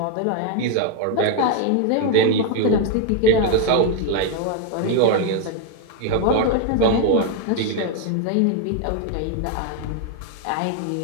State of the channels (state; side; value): different; both; correlation 0.01